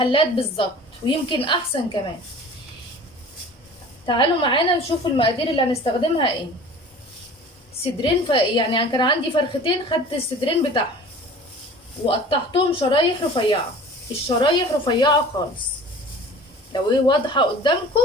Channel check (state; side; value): normal; both; correlation 0.43